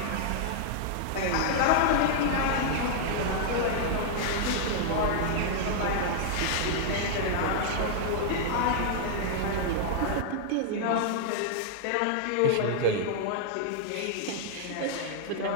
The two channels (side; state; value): both; different; correlation -0.01